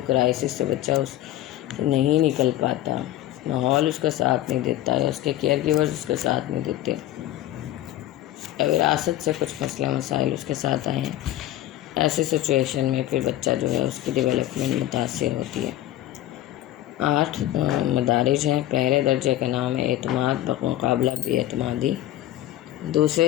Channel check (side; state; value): right; quieter; 14.0 dB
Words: کرائسس سے بچہ اس نہیں نکل پاتا، ماحول اس کا ساتھ نہیں دیتا یا اس کے کیئر گیورز اس کا ساتھ نہیں دیتے، وراثت سے کچھ مسئلہ مسائل اس کے ساتھ آئے ہیں، ایسی سچویشن میں پھر بچہ جو ہے اس کی ڈیولپمنٹ متاثر ہوتی ہے. 8 مدارج ہیں. پہلے درجے کا نام ہے اعتماد بمقابلہ بے اعتمادی.